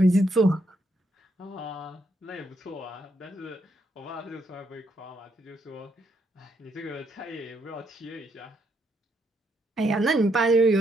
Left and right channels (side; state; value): both; normal; correlation 0.75